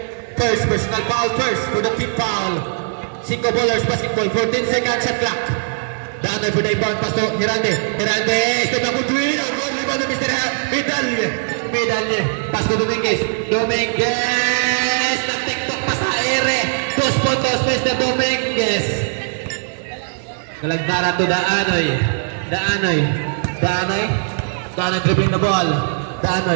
first personal foul first for the team foul. 5 ballers basketball, 14 seconds shot clock. Daan for the inbound pass to Hirande. Step up to win. Good rebound to Mr. Medalye. Pass to Dominguez. Nag-tiktok pa sa ere. 2 puntos, Mr. Dominguez. Galagdara to Daanoy. Daanoy dribbling the ball.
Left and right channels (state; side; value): silent; left; 56 dB below the other